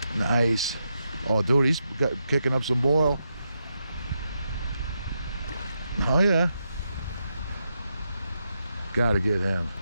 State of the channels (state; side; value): inverted; both; correlation -0.84